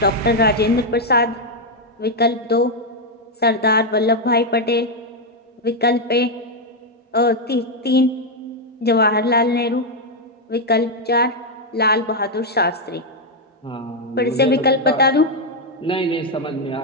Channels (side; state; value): both; normal; correlation 0.01